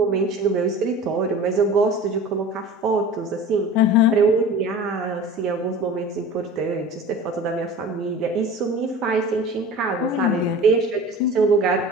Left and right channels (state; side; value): normal; both; correlation 0.38